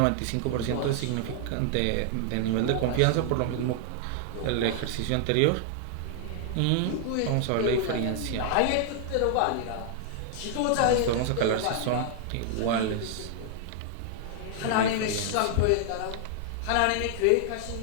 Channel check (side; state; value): both; different; correlation -0.01